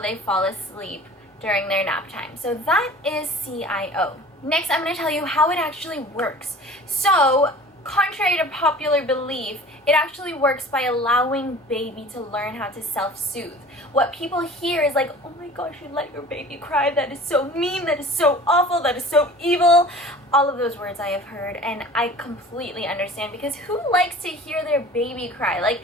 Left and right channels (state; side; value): normal; both; correlation 0.43